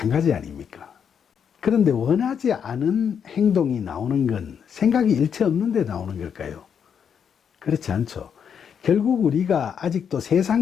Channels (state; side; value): quieter; right; 7.5 dB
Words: 아닙니까? 그런데 원하지 않은 행동이 나오는 건 생각이 일체 없는데 나오는 걸까요? 그렇지 않죠. 결국 우리가 아직도